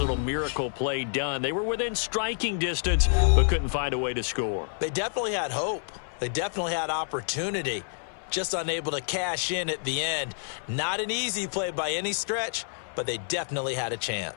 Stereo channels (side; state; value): right; silent; 58 dB below the other